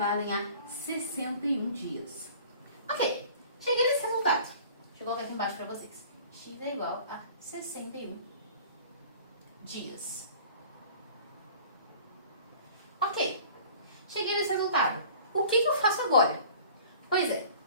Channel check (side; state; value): both; inverted; correlation -0.46